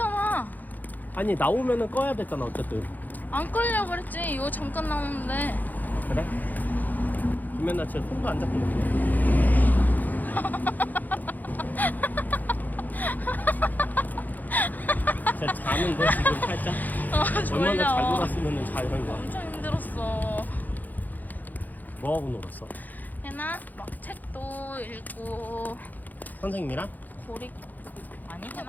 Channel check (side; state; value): right; late; 0.083 ms